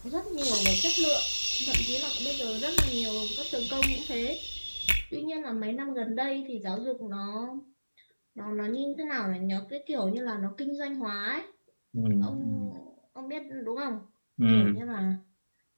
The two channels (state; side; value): inverted; both; correlation -1.00